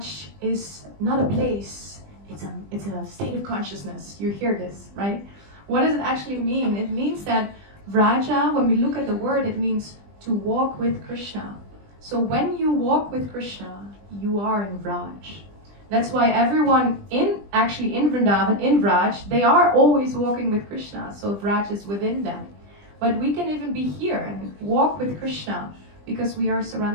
is not a place, it's a state of consciousness. You hear this, right? What does it actually mean? It means that Vraja, when we look at the word, it means to walk with Krishna. So when you walk with Krishna, you are in Vraj. That's why everyone in Vrindavan, in Vraj, they are always walking with Krishna. So Vraj is within them. But we can even be here and walk with Krishna because we are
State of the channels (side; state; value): left; late; 20 ms